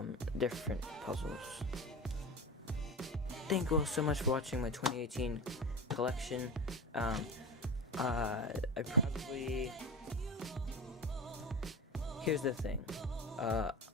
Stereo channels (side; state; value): both; normal; correlation 0.29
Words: different puzzles. Thank you all so much for watching my 2018 collection. Here's the thing.